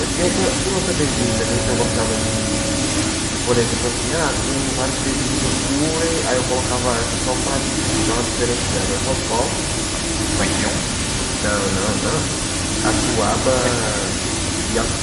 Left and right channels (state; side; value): identical; both; correlation 1.00